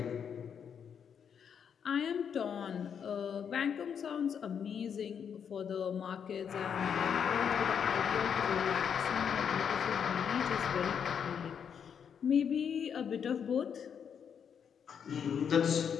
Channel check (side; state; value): right; quieter; 7.5 dB